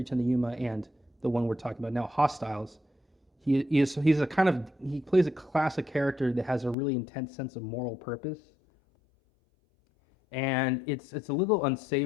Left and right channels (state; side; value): drops out; right; at 6.8 s